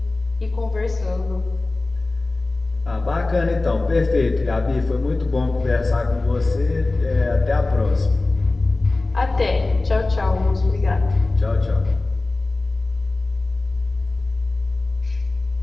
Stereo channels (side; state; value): right; quieter; 3.2 dB